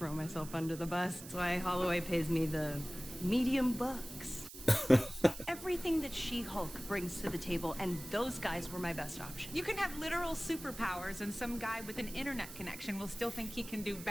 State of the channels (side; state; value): right; noise; hiss, 14 dB below the sound